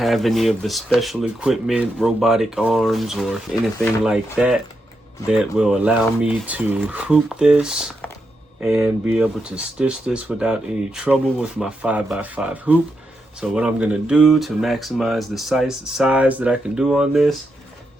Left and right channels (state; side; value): normal; both; correlation 0.84